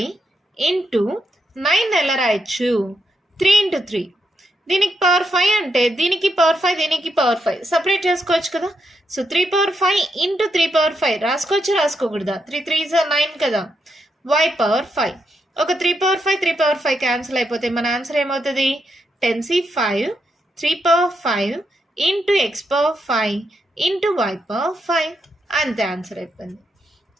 ఇంటూ 9 ఎలా రాయొచ్చు? 3 × 3. దీనికి పవర్ 5 అంటే దీనికి పవర్ 5, దీనికి పవర్ 5 సపరేట్ చేసుకోవచ్చు కదా. So 3/5 into 3/5 రాసుకోకూడదా? 3 3s 9 కదా. y power 5. ఒక 3/5 3/5 క్యాన్సిల్ అయిపోతే మన ఆన్సర్ ఏమవుతుంది? 10c 5 3/5 into x power 5 into y power 5. అంతే ఆన్సర్ అయిపోయింది.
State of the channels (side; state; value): both; normal; correlation 0.81